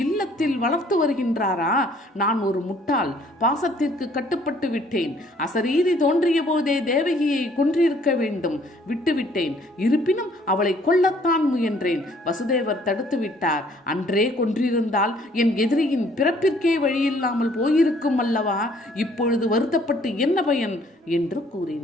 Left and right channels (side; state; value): both; normal; correlation 0.60